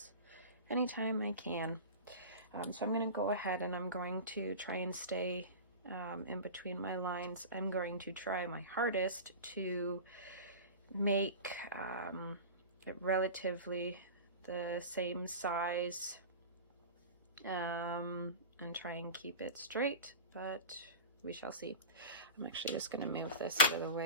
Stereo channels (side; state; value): both; inverted; correlation -0.32